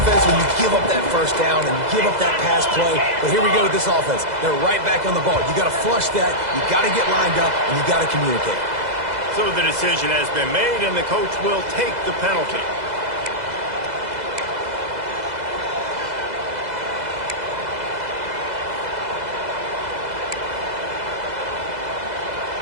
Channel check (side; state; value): left; late; 2.0 ms